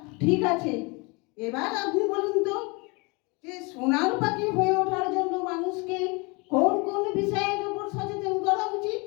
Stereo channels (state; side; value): quieter; right; 28.7 dB